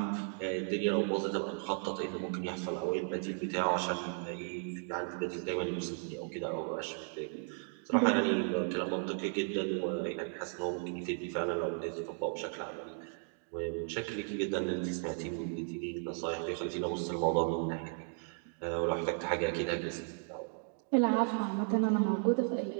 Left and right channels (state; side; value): silent; left; 54 dB below the other